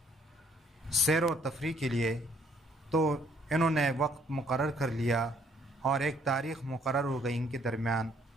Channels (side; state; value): both; normal; correlation 0.65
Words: سیر و تفریح کے لیے، تو انہوں نے وقت مقرر کر لیا اور ایک تاریخ مقرر ہو گئی ان کے درمیان۔